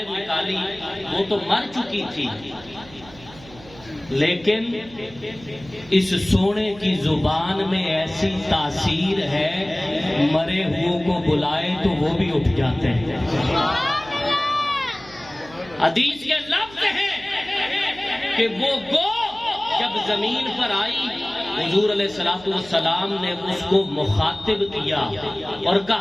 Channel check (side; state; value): right; noise; hum, 21 dB below the sound